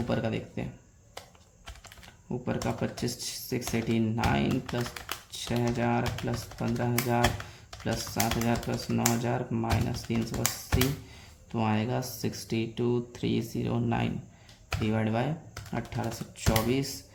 का देखते हैं। ऊपर का 25,689 plus 6,000 plus 15,000 plus 7,000 plus 9,000 minus 380, तो आएगा 62,309 डिवाइड बाय 1824,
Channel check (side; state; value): both; identical; correlation 1.00